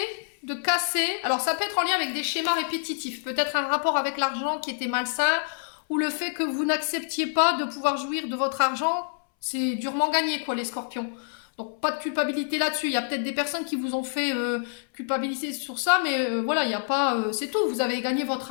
de casser. Alors, ça peut être en lien avec des schémas répétitifs. Peut-être un rapport avec l'argent qui était malsain, ou le fait que vous n'acceptiez pas de pouvoir jouir de votre argent. C'est durement gagné, quoi, les scorpions. Donc, pas de culpabilité là-dessus. Il y a peut-être des personnes qui vous ont fait culpabiliser sur ça, mais voilà, il n'y a pas... c'est tout. Vous avez gagné votre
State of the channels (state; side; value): silent; right; 60 dB below the other